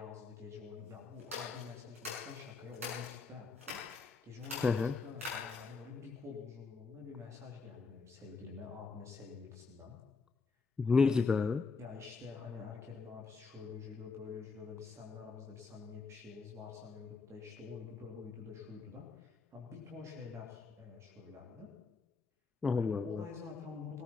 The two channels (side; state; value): right; quieter; 4.6 dB